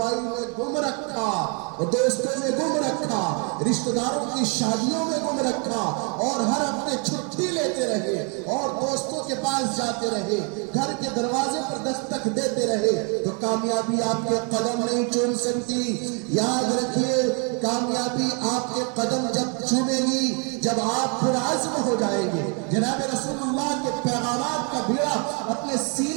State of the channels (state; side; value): quieter; left; 36.4 dB